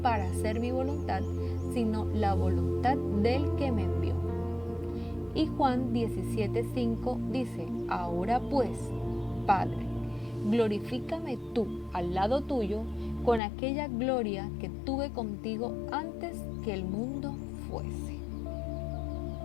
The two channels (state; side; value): drops out; right; at 13.4 s